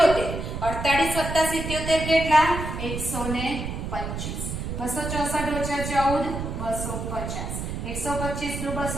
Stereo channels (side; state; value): right; noise; rumble, 5 dB below the sound